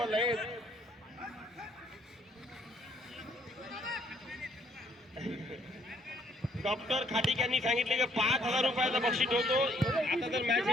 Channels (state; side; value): normal; both; correlation 0.66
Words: डॉक्टर खाटिक यांनी सांगितले की 5,000 रुपयाचा बक्षीस ठेवतो. आता तर मॅच